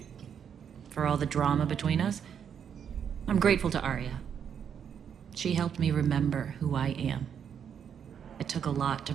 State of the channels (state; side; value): quieter; left; 8.0 dB